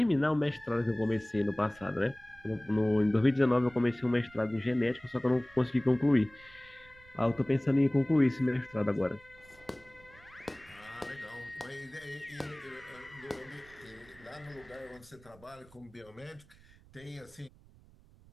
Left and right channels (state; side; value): noise; right; rumble, 25 dB below the sound